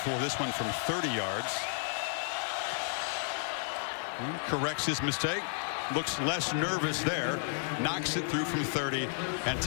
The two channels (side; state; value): right; silent; 56 dB below the other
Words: this one from 30 yards. Corrects his mistake, looks less nervous there, knocks it through from 30 and